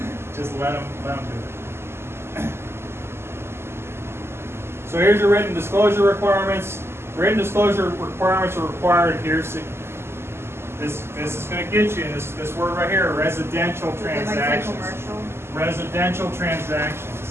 Just let them do it. So here's your written disclosure requirements. Written disclosure requirements are required here. So this is going to get you this word right here: residential transactions. Residential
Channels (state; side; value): late; left; 0.12 ms